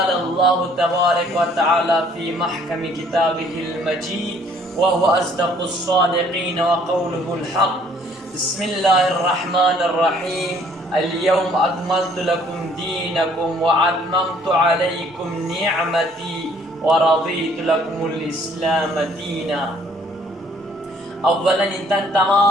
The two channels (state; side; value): normal; both; correlation 0.60